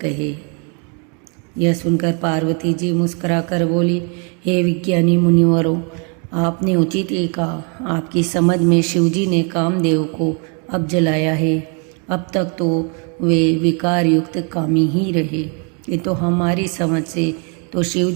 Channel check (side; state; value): left; quieter; 37.1 dB